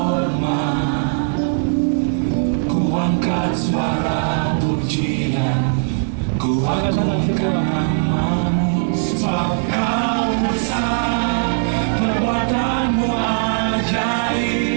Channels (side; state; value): left; silent; digital silence